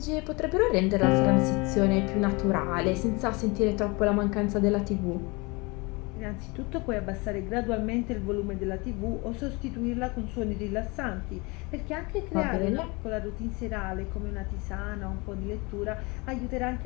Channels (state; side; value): quieter; right; 27.0 dB